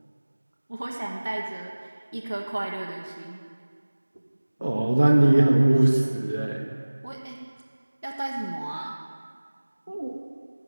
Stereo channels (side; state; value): both; inverted; correlation -1.00